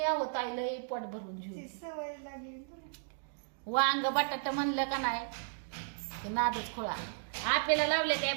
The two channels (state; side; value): silent; left; digital silence